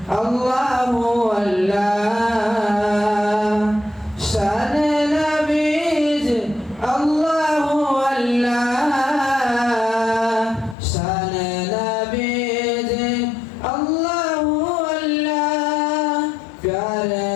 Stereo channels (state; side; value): drops out; right; at 10.8 s